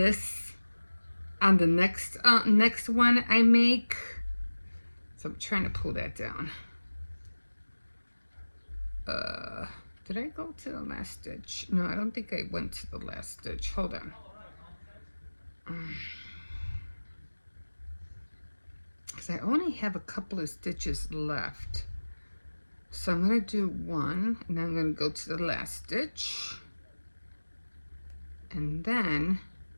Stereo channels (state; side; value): inverted; both; correlation -1.00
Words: on the next one I make. So I'm trying to pull that down. Did I go to the last stitch? No, I don't think I went to the last stitch. Hold on. Because I only have a couple of stitches left. So I'm going to do one, and then I'm going to go to the last stitch. And then,